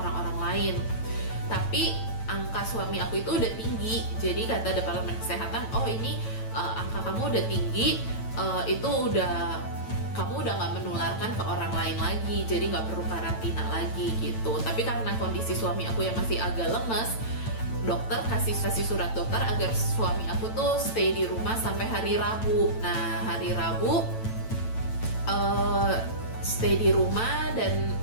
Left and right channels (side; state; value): right; late; 9.0 ms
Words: lain. Tapi angka suami aku itu udah tinggi, jadi kata departemen kesehatan, oh ini angka kamu udah tinggi, kamu udah nggak menularkan ke orang lain lagi, jadi nggak perlu karantina lagi gitu. Tapi karena kondisi suami aku yang masih agak lemes, dokter kasih surat dokter agar suami aku tuh stay di rumah sampai hari Rabu. Nah hari Rabu stay di rumah, dan